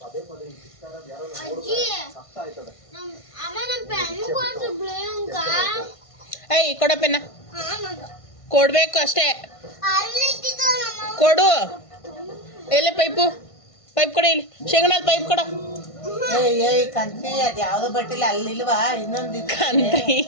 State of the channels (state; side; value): late; right; 1.5 ms